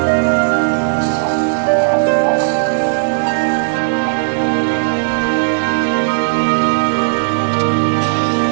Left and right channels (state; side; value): silent; left; 70 dB below the other